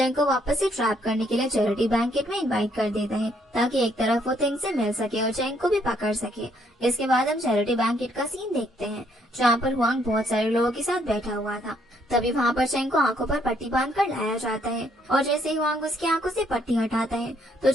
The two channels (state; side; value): normal; both; correlation 0.69